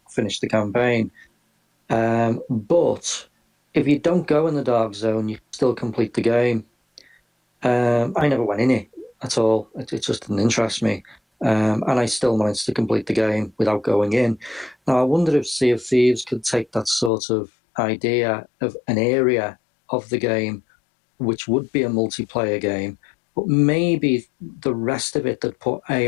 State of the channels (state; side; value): drops out; right; at 17.1 s